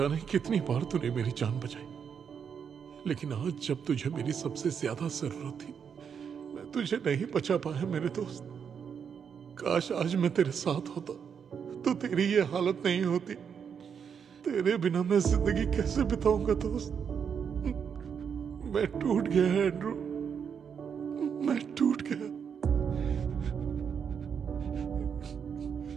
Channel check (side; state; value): left; quieter; 7.1 dB